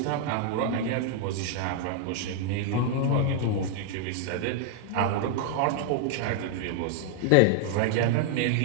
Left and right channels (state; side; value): different; both; correlation 0.00